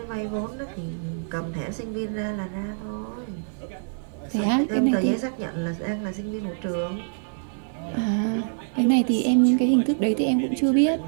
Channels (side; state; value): left; silent; digital silence